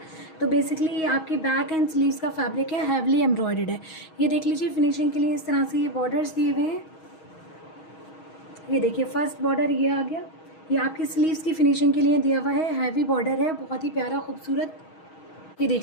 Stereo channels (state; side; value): late; right; 6.3 ms